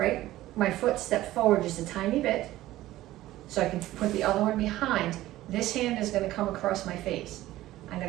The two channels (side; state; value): left; quieter; 15.6 dB